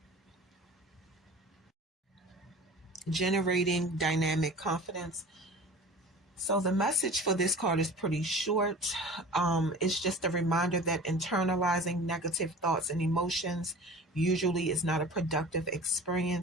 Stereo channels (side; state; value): both; normal; correlation 0.40